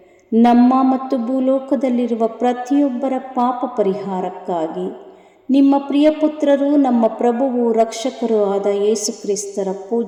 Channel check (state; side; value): identical; both; correlation 1.00